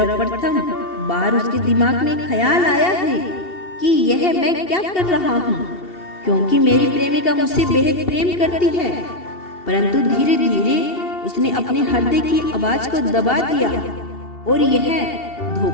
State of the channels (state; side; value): late; right; 2.7 ms